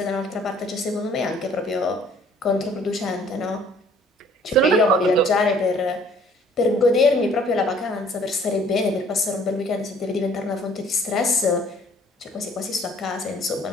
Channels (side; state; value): both; normal; correlation 0.57